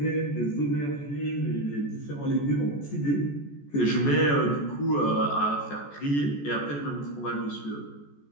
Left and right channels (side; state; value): right; late; 14 ms